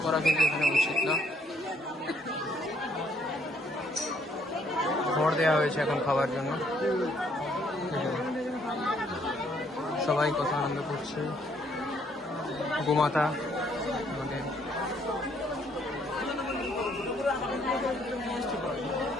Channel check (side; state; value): both; normal; correlation 0.67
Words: করা কিন্তু এখানে উচিত না। খড় দেওয়া হয়েছে এখন খাবার জন্য। সবাই কত আনন্দ করছে। গোমাতা আমাদের